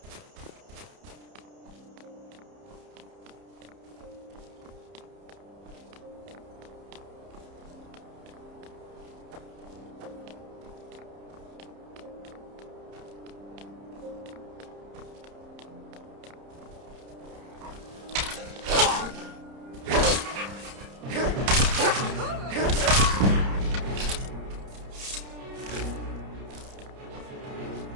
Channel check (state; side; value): late; left; 30 ms